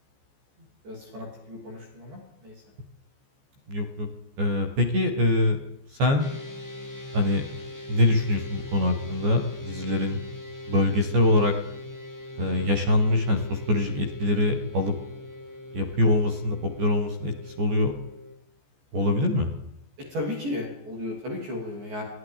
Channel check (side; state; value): left; late; 14 ms